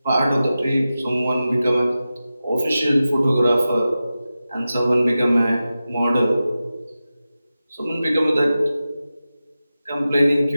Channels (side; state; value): both; inverted; correlation -0.93